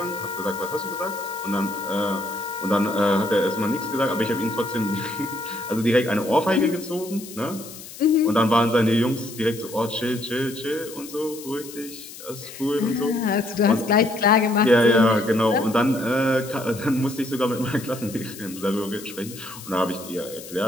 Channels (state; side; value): noise; left; hiss, 15 dB below the sound